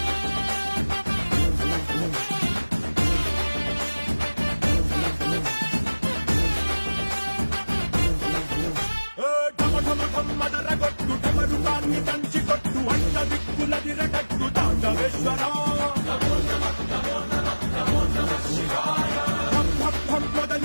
మదరగొట్టు టమరుకాన్ని దంచి కొట్టు అంట దిక్కులదిరగట్టు తాండవేశ్వర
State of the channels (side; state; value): both; inverted; correlation -1.00